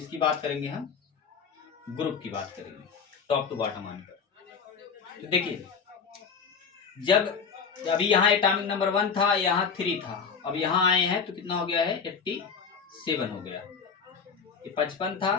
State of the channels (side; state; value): right; quieter; 5.9 dB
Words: बात करेंगे, हम ग्रुप की बात करेंगे टॉप टू बॉटम आने पर। तो देखिए जब अभी यहाँ एटॉमिक नंबर 1 था, यहाँ 3 था, अब यहाँ आए हैं तो कितना हो गया है, 87 हो गया। ये 55 था,